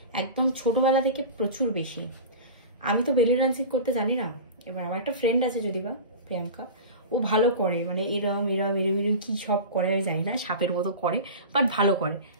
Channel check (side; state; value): both; inverted; correlation -0.31